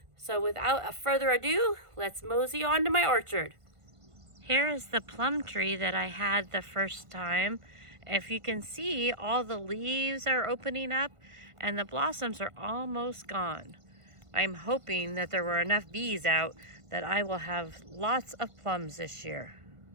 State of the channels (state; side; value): late; left; 1.5 ms